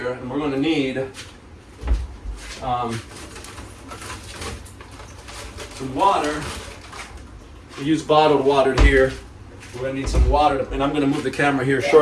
And we're going to need some water. We use bottled water here. We're going to need some water. And I'm going to move the camera here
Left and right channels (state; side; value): identical; both; correlation 1.00